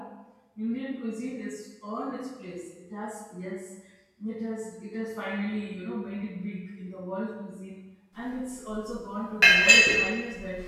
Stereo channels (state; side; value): identical; both; correlation 1.00